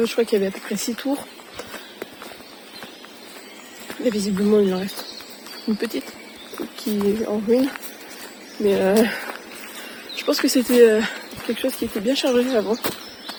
je crois qu'il y avait à peu près 6 tours. Et visiblement, il en reste une petite qui est en ruine. Mais je pense que c'était quelque chose qui était bien chargé avant.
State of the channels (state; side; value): identical; both; correlation 1.00